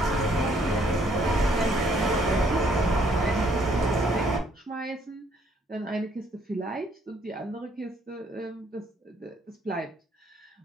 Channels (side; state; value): both; normal; correlation 0.66